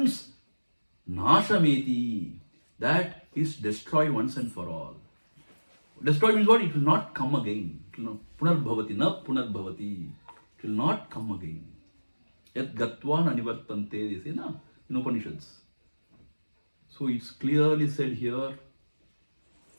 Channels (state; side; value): inverted; both; correlation -1.00